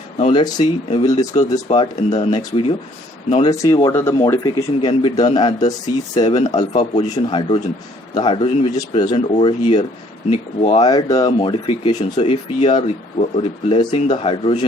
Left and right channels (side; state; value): both; normal; correlation 0.61